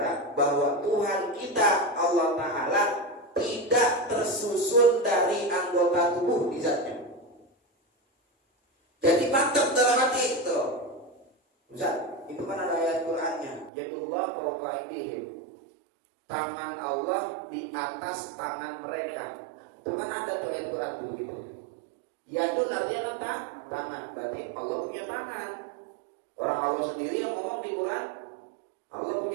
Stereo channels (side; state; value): left; drops out; at 13.7 s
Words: bahwa Tuhan kita Allah Ta'ala tidak tersusun dari anggota tubuh di zatnya. Jadi mantep dalam hati itu. Ustaz, itu kan ada ayat Qur'annya, yadullah fawqa aydihim. Tangan Allah di atas tangan mereka. Itu kan ada tuh ayat Qur'an tuh gitu. Yadun artinya kan tangan, berarti Allah punya tangan. Orang Allah sendiri yang ngomong di Quran, Allah